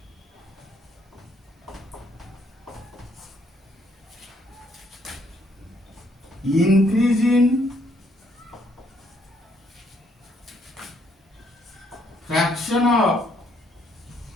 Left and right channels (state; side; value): normal; both; correlation 0.69